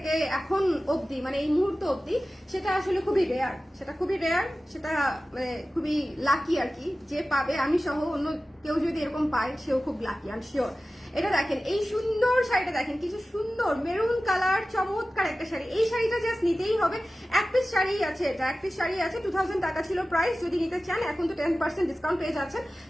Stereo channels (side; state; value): both; normal; correlation 0.95